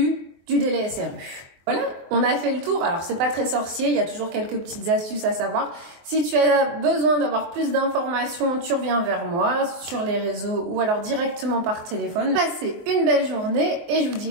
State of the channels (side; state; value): left; late; 23 ms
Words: du délai SRU. Voilà, on a fait le tour. Alors, c'est pas très sorcier, il y a toujours quelques petites astuces à savoir. Si tu as besoin d'avoir plus d'informations, tu reviens vers moi sur les réseaux ou alors directement par téléphone. Passez une belle journée et je vous